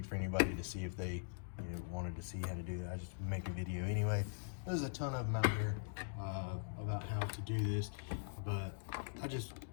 for anybody to see if they, wanted to see how to do it. I just make a video anyway. There's a ton of them out here about how to do this, but I just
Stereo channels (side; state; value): right; silent; digital silence